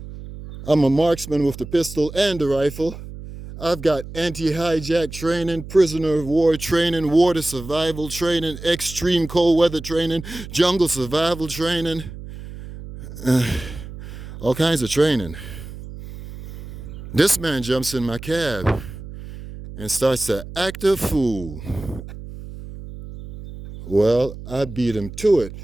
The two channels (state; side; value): noise; right; hum, 13 dB below the sound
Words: I'm a marksman with the pistol and the rifle. I've got anti-hijack training, prisoner of war training, water survival training, extreme cold weather training, jungle survival training, all kinds of training. This man jumps in my cab and starts to act a fool. Well, I beat him to it.